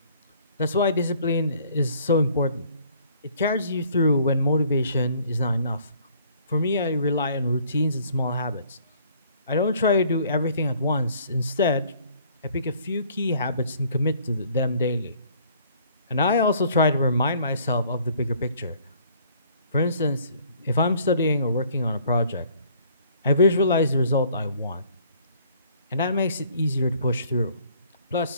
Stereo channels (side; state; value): both; inverted; correlation -0.58